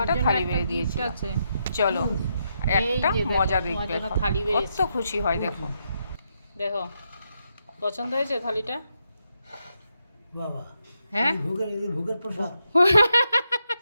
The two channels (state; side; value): inverted; both; correlation -0.81